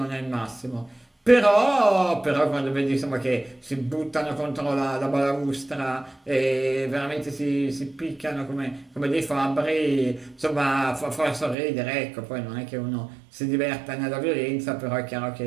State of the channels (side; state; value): left; drops out; at 11.6 s